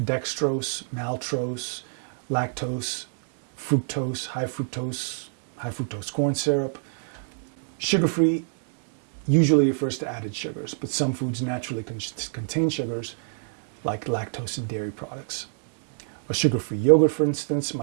dextrose, maltose, lactose, fructose, high fructose corn syrup. Sugar-free usually refers to added sugars, but some foods naturally contain sugars, like lactose in dairy products. A sugar-free yogurt, for instance,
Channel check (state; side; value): silent; left; digital silence